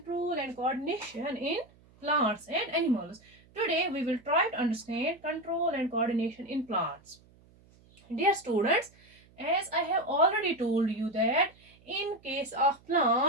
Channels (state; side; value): noise; right; hum, 28 dB below the sound